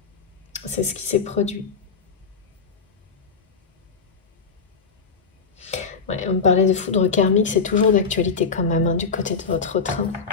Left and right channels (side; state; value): right; quieter; 5.3 dB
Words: C'est ce qui s'est produit. Ouais, on me parlait de foudre karmique, c'est toujours d'actualité quand même, hein, du côté de votre train.